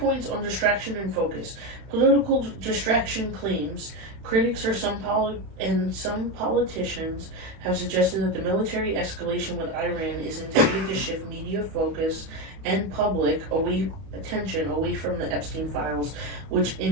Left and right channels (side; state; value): left; late; 31 ms